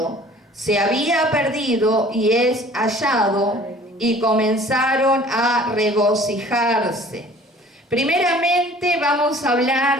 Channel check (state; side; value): normal; both; correlation 0.49